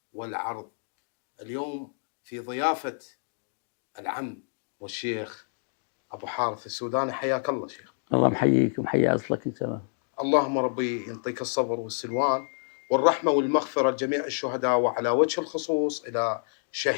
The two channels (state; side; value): silent; right; digital silence